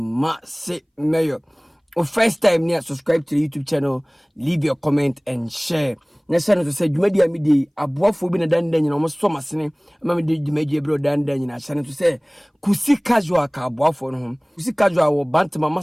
mayor. First time near subscribe to the YouTube channel, leave your comment and share. Next time to say Jumedia midi abuafo bi na dan dan nyina almost so masene ma me de Jumedia bro dan dan nyina channel to say kusi casual ka abuafo no ho kusi casual wo bantama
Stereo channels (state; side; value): identical; both; correlation 1.00